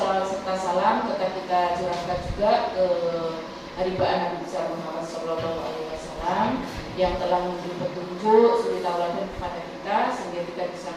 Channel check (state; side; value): identical; both; correlation 1.00